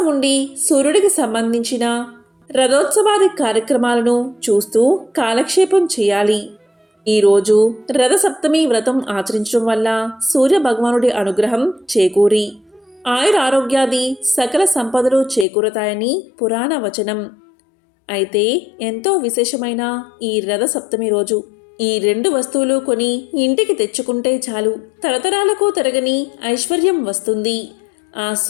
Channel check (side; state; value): right; drops out; at 15.5 s